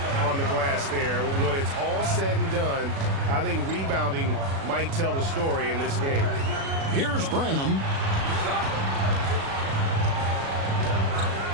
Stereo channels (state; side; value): late; left; 36 ms